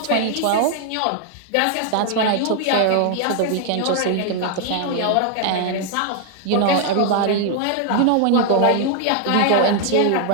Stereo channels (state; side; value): different; both; correlation 0.00